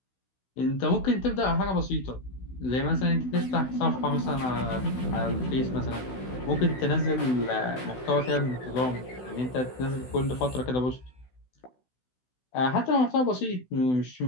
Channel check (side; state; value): right; late; 16 ms